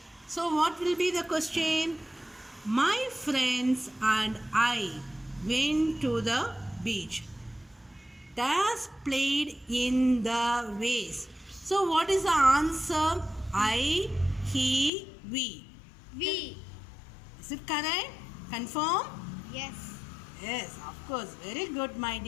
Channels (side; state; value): right; drops out; at 14.9 s